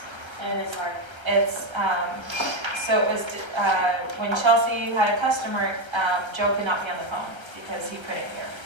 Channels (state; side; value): late; left; 1.3 ms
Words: And it's hard. So it was, when Chelsea had a customer, Joe could not be on the phone because he couldn't hear.